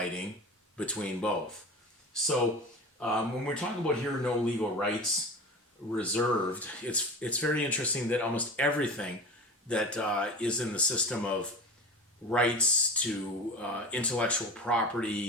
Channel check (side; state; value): both; normal; correlation 0.32